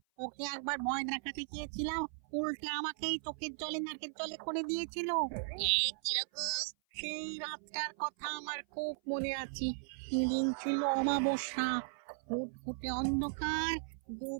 ওকে একবার ভয় দেখাতে গিয়েছিলাম, উল্টে আমাকেই চোখের জলে নাকের জলে করে দিয়েছিল। কিরকম? সেই রাতটার কথা আমার খুব মনে আছে। সেদিন ছিল অমাবস্যা, ফুটফুটে অন্ধকার।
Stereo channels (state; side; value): silent; left; 53 dB below the other